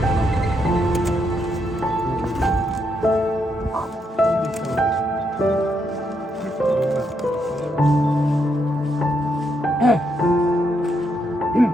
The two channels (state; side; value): normal; both; correlation 0.79